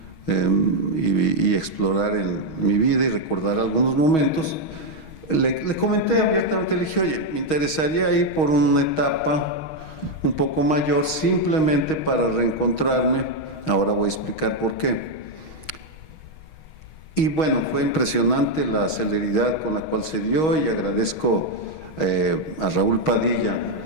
y explorar en mi vida y recordar algunos momentos, le comenté abiertamente, le dije, oye, me interesaría ir por una etapa un poco mayor simplemente para reencontrarme. Ahora voy a explicar por qué. Y bueno, fue impresionante la celeridad con la cual se dio y agradezco a Raúl Padilla,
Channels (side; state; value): right; late; 6.3 ms